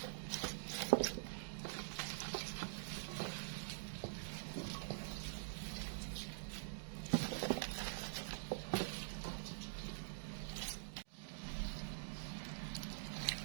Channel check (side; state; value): left; silent; digital silence